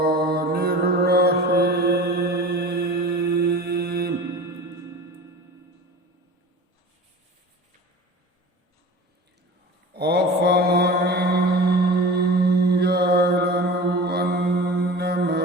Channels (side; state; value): both; normal; correlation 0.36